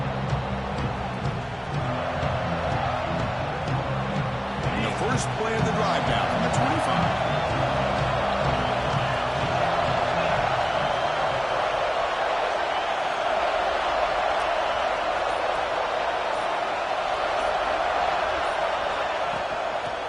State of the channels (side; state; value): both; identical; correlation 1.00